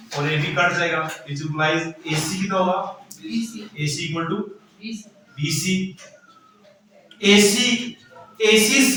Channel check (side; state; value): both; identical; correlation 1.00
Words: और AB कट जाएगा, which implies AC कितना होगा, AC equal to BC। AC